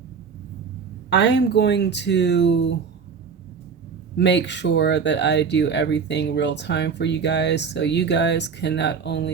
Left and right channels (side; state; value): left; quieter; 5.9 dB